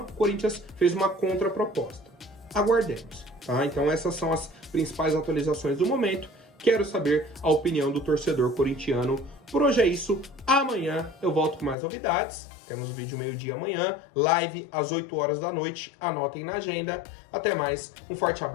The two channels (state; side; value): drops out; right; at 11.8 s